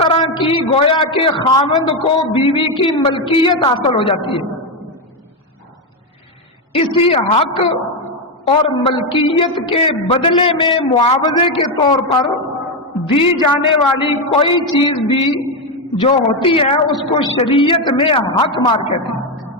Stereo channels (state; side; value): normal; both; correlation 0.08